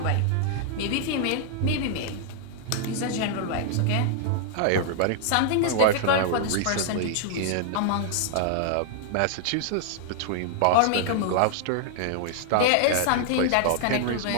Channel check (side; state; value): both; different; correlation 0.00